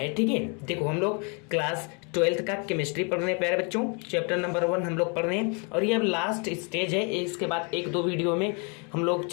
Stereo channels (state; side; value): quieter; right; 35.1 dB